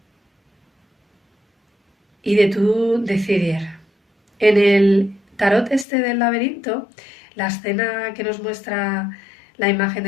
Y de tú decidir. En el tarot este del laberinto, la escena que nos muestra la imagen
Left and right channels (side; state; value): right; drops out; at 5.9 s